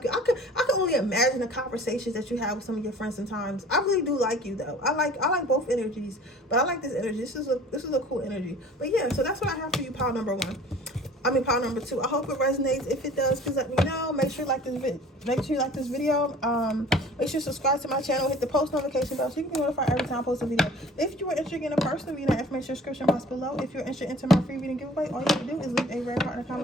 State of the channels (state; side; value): normal; both; correlation 0.47